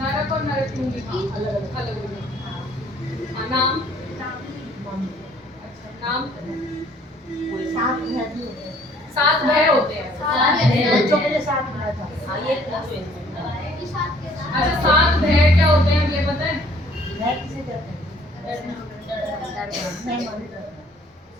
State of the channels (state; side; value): normal; both; correlation 0.59